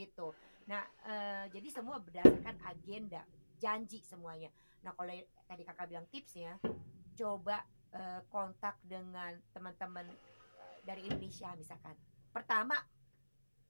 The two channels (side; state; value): both; inverted; correlation -1.00